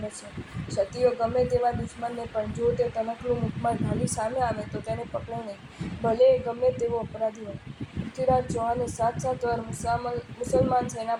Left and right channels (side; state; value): both; identical; correlation 1.00